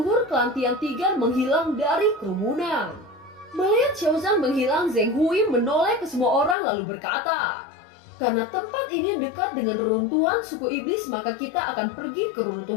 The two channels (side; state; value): right; drops out; at 6.6 s